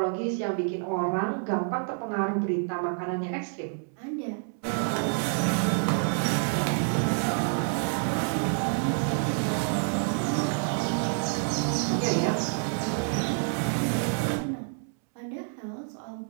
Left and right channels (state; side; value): silent; left; 58 dB below the other